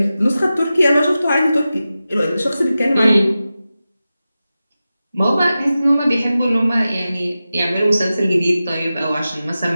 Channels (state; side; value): inverted; both; correlation -0.94